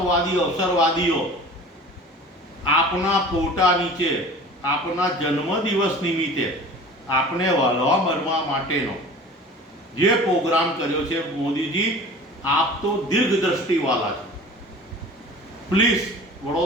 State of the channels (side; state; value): both; normal; correlation 0.41